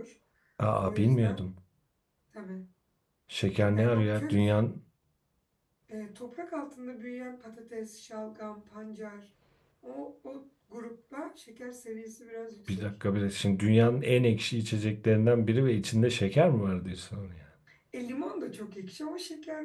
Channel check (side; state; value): both; identical; correlation 1.00